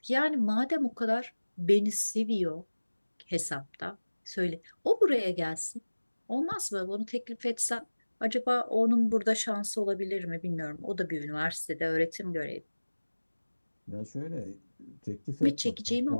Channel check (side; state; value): both; inverted; correlation -1.00